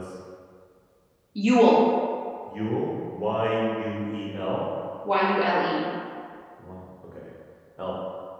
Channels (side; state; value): both; identical; correlation 1.00